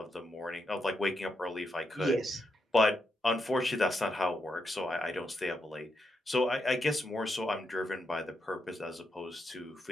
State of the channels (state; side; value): normal; both; correlation 0.82